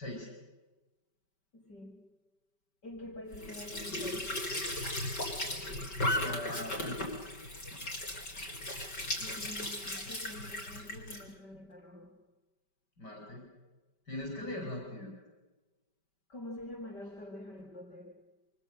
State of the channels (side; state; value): right; late; 5.2 ms